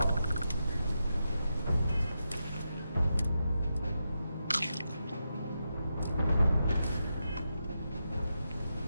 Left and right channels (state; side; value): inverted; both; correlation -0.87